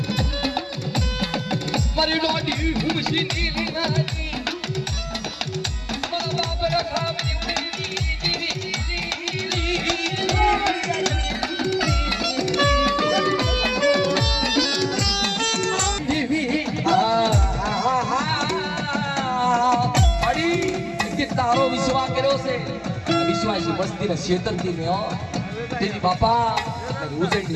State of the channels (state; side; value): identical; both; correlation 1.00